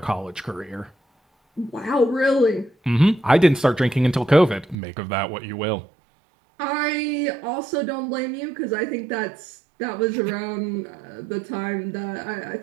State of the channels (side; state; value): left; drops out; at 4.8 s